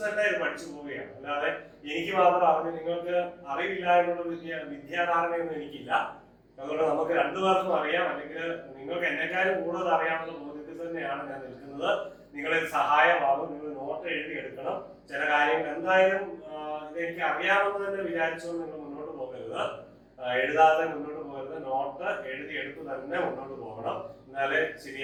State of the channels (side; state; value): both; identical; correlation 1.00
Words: തന്നെ ഇത് പഠിച്ചു പോവുകയാണ്. അല്ലാതെ എനിക്ക് മാത്രം അറിഞ്ഞ് നിങ്ങൾക്ക് അറിവില്ല എന്നുള്ള വിദ്യാധാരണയൊന്നും എനിക്കില്ല. അതുകൊണ്ട് നമുക്ക് രണ്ടുപേർക്കും അറിയാം, അല്ലെങ്കിൽ നിങ്ങൾക്ക് എന്നെക്കാളും കൂടുതൽ അറിയാമെന്ന ബോധ്യത്തിൽ തന്നെയാണ് ഞാൻ നിൽക്കുന്നത്. നിങ്ങളിൽ സഹായമാകും. നിങ്ങൾ നോട്ട് എഴുതി എടുക്കണം. ചില കാര്യങ്ങൾ എന്തായാലും ഇത് എനിക്ക് അറിയാമെന്ന് തന്നെ വിചാരിച്ചുകൊണ്ട് നിങ്ങൾ മുന്നോട്ട് പോകരുത്, എഴുതാതെ മുന്നോട്ട് പോകരുത്. നോട്ട് എഴുതി എടുത്ത് തന്നെ മുന്നോട്ട് പോകണം. എന്നാലേ